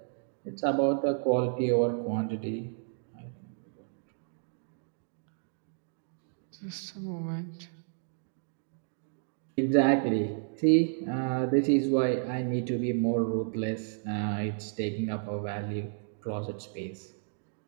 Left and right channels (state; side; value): silent; left; digital silence